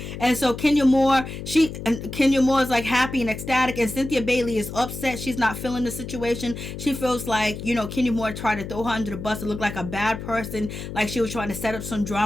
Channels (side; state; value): left; noise; hum, 9 dB below the sound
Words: And so Kenya Moore is like happy and ecstatic, and Cynthia Bailey is upset. She's not feeling the situation. She feels like, Kenya Moore tried to throw her under the bus to look like a bad person, like she was trying to set up some